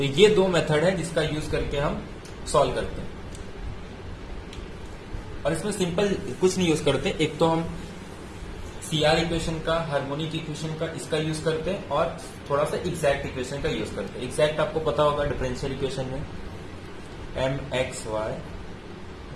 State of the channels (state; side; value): identical; both; correlation 1.00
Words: ये दो मेथड है जिसका यूज करके हम सॉल्व करते हैं। और इसमें सिंपल कुछ नहीं यूज करते, एक तो हम CR इक्वेशन का, हार्मोनिक इक्वेशन का इसका यूज करते हैं, और थोड़ा सा एग्जैक्ट इक्वेशन का यूज करते हैं। एग्जैक्ट आपको पता होगा डिफरेंशियल इक्वेशन में mxy